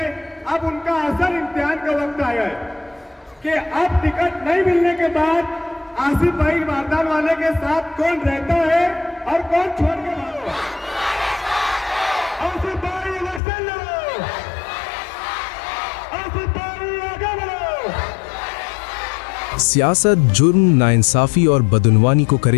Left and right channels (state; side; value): drops out; right; at 13.4 s